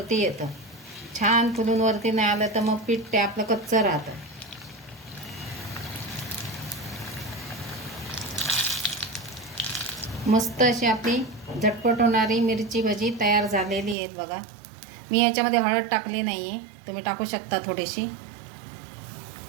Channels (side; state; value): left; drops out; at 14.0 s